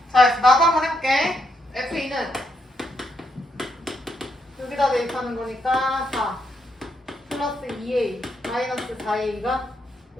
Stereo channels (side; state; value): both; normal; correlation 0.78